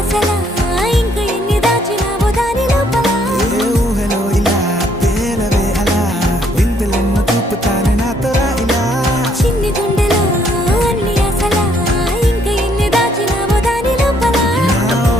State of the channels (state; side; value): normal; both; correlation 0.68